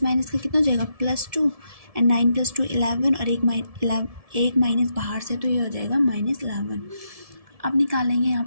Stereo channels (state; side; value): late; left; 1.7 ms